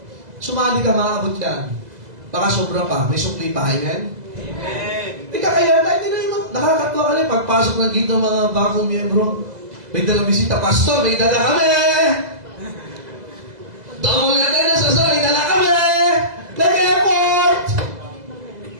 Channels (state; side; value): late; left; 2.0 ms